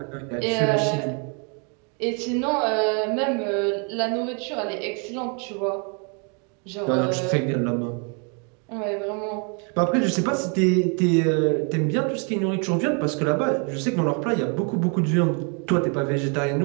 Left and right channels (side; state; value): left; quieter; 37.6 dB